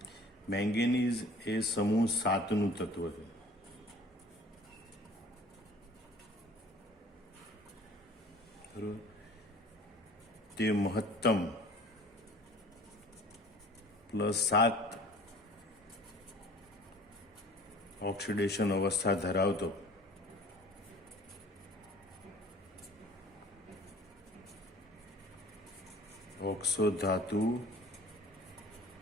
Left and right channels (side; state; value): both; normal; correlation 0.48